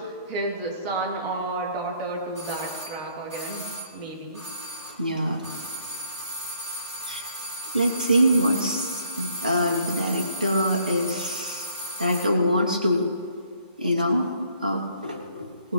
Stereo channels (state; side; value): inverted; both; correlation -0.65